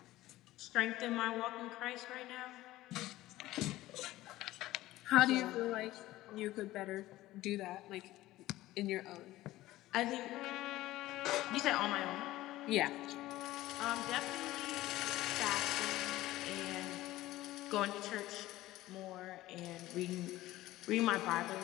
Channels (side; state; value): right; quieter; 16.5 dB